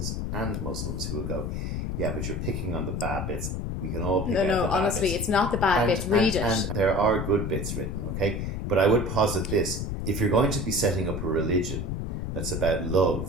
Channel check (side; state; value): left; noise; rumble, 3 dB below the sound